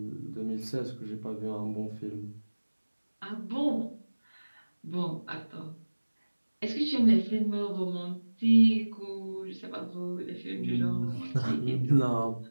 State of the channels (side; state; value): both; inverted; correlation -1.00